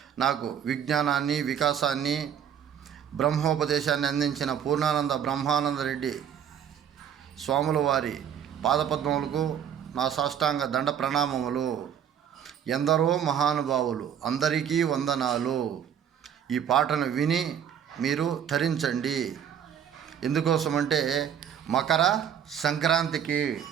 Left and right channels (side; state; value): left; quieter; 8.8 dB